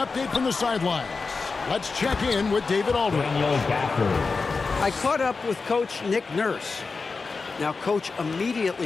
from the sidelines, let's check in with David Aldridge. I caught up with Coach Nick Nurse. Now, Coach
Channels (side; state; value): right; quieter; 4.4 dB